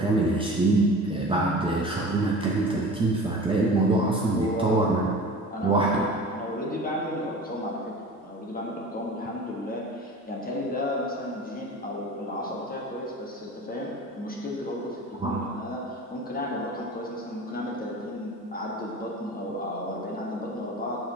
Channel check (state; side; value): normal; both; correlation 0.38